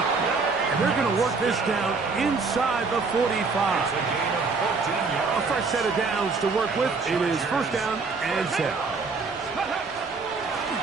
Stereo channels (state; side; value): quieter; left; 4.4 dB